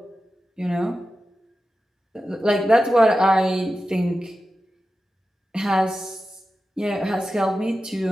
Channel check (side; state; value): both; normal; correlation 0.93